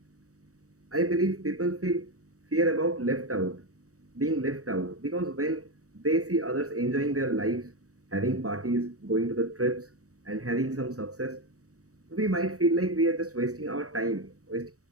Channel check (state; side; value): late; left; 0.65 ms